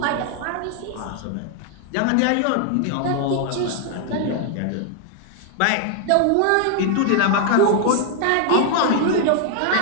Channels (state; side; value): different; both; correlation 0.00